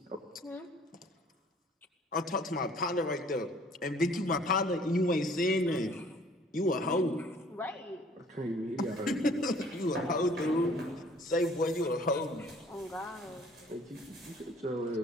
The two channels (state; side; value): normal; both; correlation 0.56